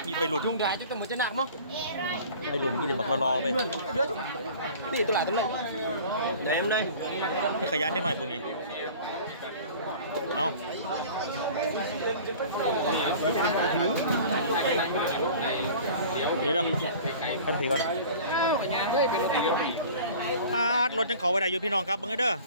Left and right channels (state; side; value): inverted; both; correlation -0.43